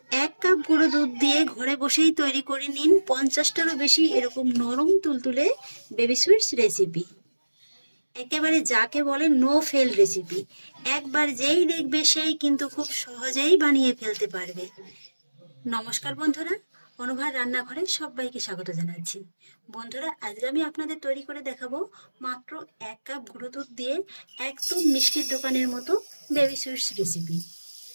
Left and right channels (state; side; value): inverted; both; correlation -1.00